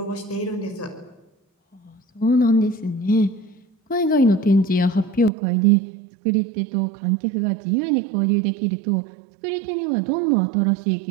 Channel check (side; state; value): left; drops out; at 5.3 s